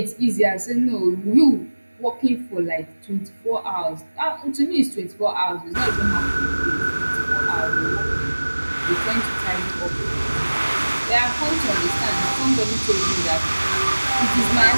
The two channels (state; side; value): inverted; both; correlation -1.00